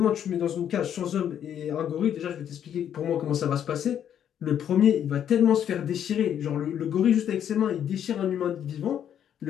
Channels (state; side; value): quieter; right; 9.5 dB